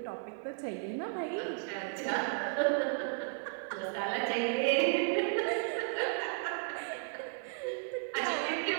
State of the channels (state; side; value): silent; left; 55 dB below the other